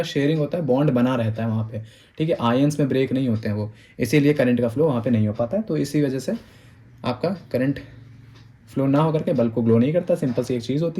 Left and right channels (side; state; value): both; identical; correlation 1.00